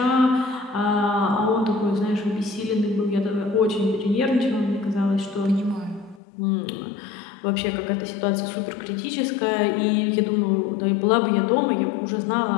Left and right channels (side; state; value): right; drops out; at 6.2 s